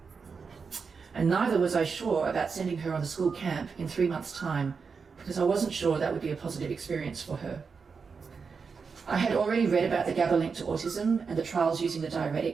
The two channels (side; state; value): left; quieter; 5.3 dB